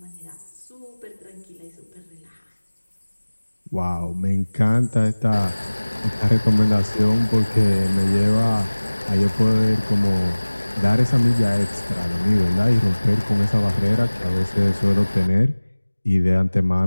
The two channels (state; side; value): inverted; both; correlation -1.00